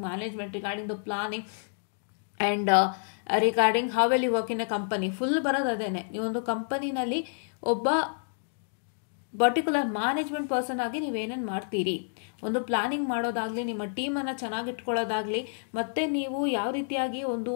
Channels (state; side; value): silent; right; digital silence